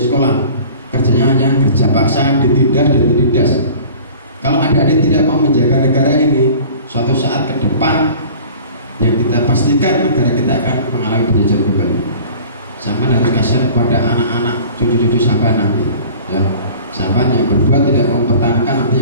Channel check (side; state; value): both; inverted; correlation -0.44